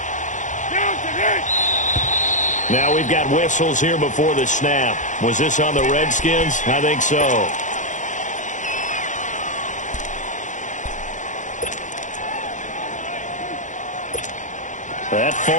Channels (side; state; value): right; late; 0.36 ms